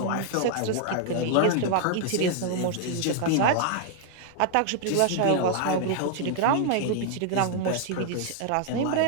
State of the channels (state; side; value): different; both; correlation 0.00